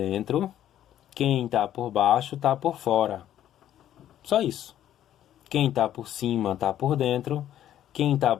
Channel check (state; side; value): quieter; right; 11.6 dB